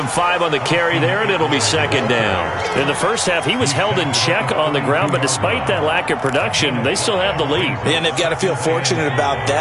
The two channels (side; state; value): both; identical; correlation 1.00